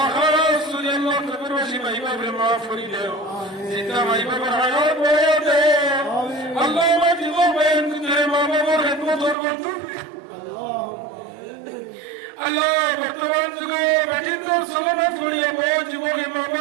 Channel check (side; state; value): left; drops out; at 9.3 s